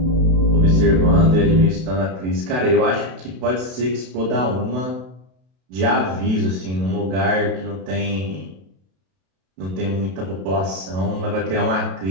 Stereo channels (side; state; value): left; late; 32 ms